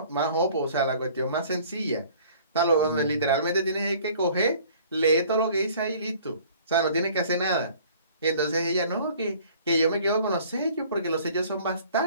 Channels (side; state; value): both; inverted; correlation -0.52